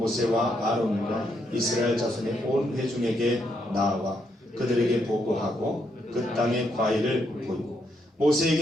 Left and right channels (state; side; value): normal; both; correlation 0.77